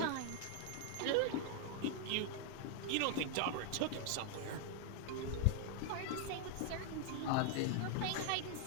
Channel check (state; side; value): different; both; correlation 0.00